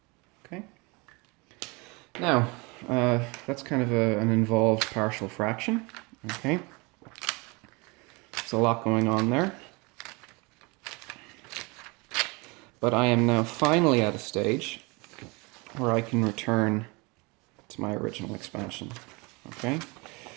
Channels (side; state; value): left; quieter; 27.4 dB